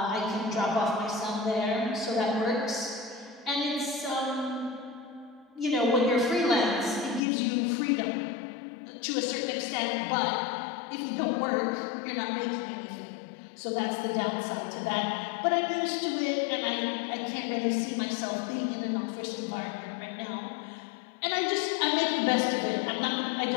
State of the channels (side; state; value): right; drops out; at 7.2 s